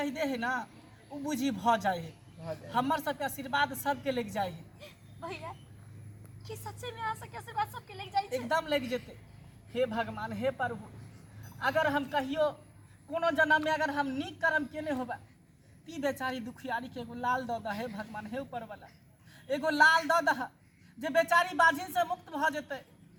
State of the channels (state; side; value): identical; both; correlation 1.00